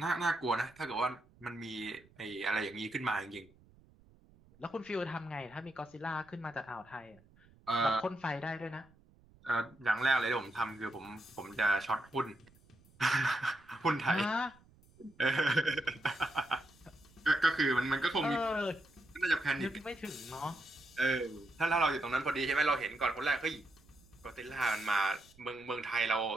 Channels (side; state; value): right; noise; rumble, 28 dB below the sound